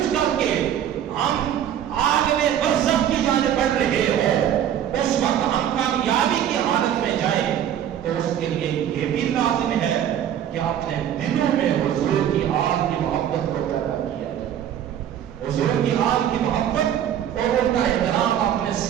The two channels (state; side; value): quieter; left; 10.1 dB